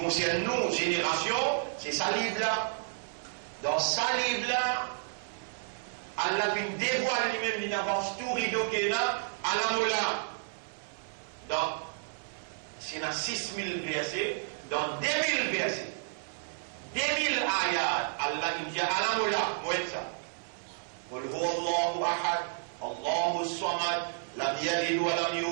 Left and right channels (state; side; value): silent; left; 57 dB below the other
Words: nous, génération, c'est sa livre-là. Dans sa livre-là, Allah vient dévoiler lui-même, il avance tout rideau qu'il a à la moula. Donc, c'est dans 6000 versets, dans 2000 versets. 2000 ayat, Allah dit à la moula, moi ça. Qul huwa Allahu ahad, Allahu samad, lam yalid wa lam